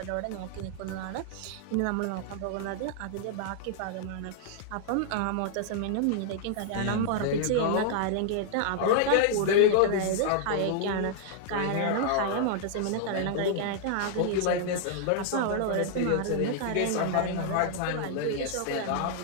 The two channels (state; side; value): different; both; correlation -0.01